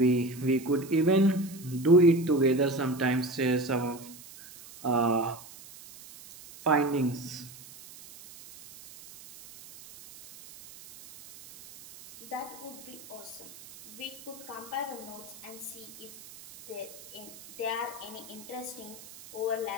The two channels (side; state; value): right; noise; hiss, 18 dB below the sound